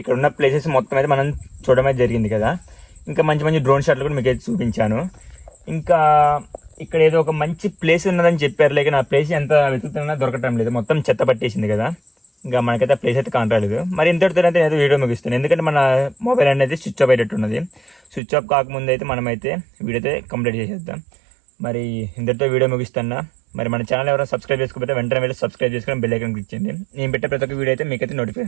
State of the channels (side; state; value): left; drops out; at 18.2 s